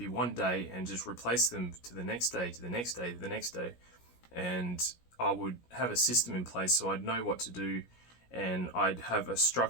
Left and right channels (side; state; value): right; late; 17 ms